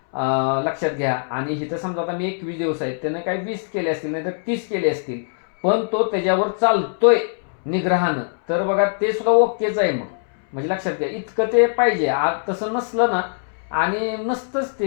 लक्षात घ्या. आणि इथं समजा आता मी 21 दिवस आहेत, त्यानं काही 20 केले असतील, नाही तर 30 केले असतील, पण तो त्याच्यावर चालतोय निग्रहानं, तर बघा ते सुद्धा ओकेच आहे मग. म्हणजे लक्षात घ्या, इतकं ते पाहिजे. आज तसं नसलं ना, आणि नसतंच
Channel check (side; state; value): right; silent; 64 dB below the other